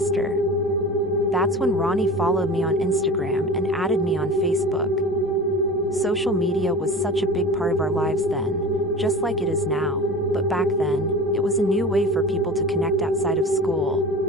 That's when Ronnie followed me on Instagram and added me on Facebook. Social media was such a big part of our lives then, just like it is now, but back then, it was a new way for people to connect outside of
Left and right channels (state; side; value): normal; both; correlation 0.34